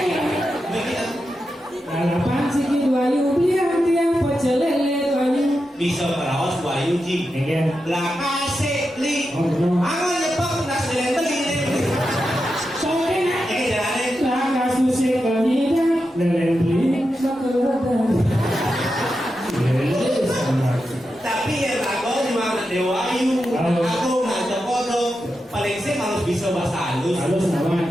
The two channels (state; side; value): normal; both; correlation 0.89